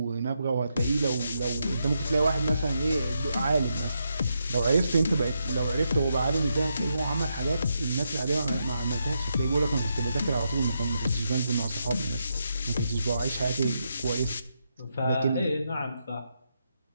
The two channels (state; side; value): inverted; both; correlation -0.82